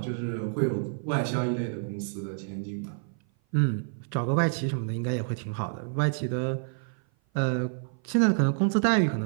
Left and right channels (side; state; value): left; silent; 56 dB below the other